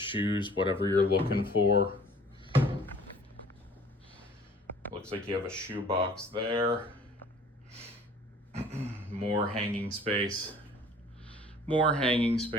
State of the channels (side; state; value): both; normal; correlation 0.51